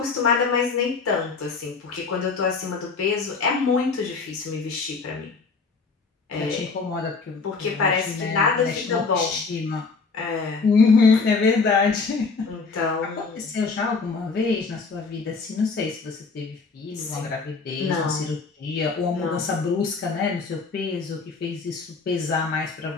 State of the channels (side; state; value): right; quieter; 4.6 dB